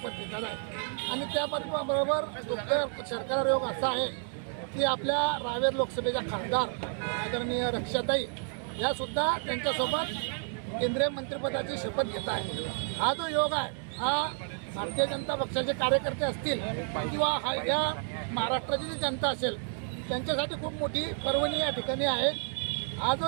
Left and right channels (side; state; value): left; silent; 57 dB below the other